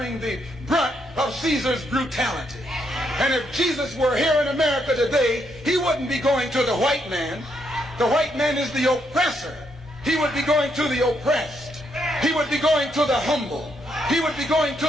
the brunt of Caesar's brutality. And if Jesus were here in America today, he wouldn't be going to the white man. The white man is the oppressor. He would be going to the oppressed. He would be going to the humble. He would be going to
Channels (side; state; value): both; normal; correlation 0.76